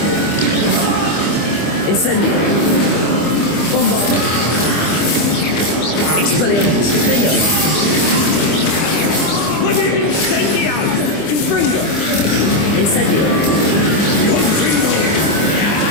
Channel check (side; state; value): right; late; 25 ms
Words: Incendio! Bombardo! Expelliarmus! Defender!